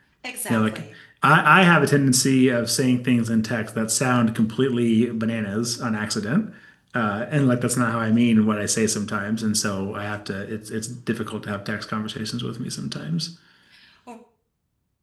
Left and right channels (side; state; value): both; identical; correlation 1.00